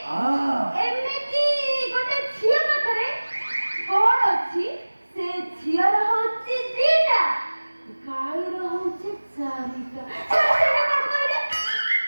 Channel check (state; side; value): inverted; both; correlation -1.00